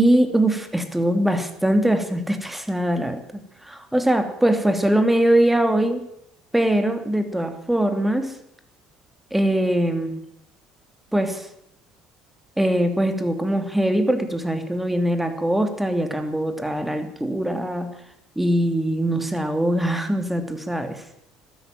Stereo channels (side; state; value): both; normal; correlation 0.90